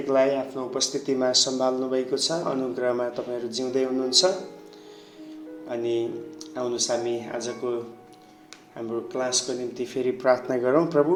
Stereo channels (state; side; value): identical; both; correlation 1.00